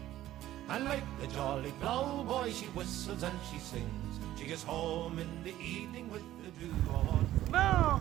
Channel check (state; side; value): quieter; left; 13.9 dB